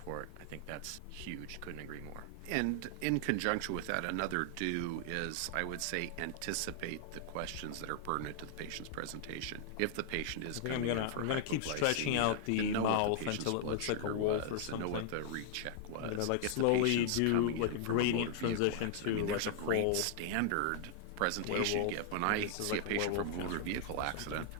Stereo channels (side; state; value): both; different; correlation 0.00